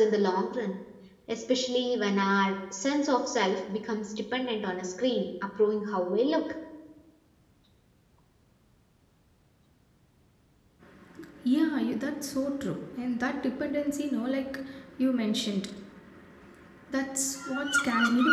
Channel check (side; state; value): both; identical; correlation 1.00